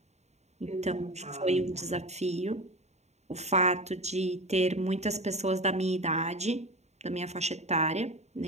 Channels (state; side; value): late; left; 0.32 ms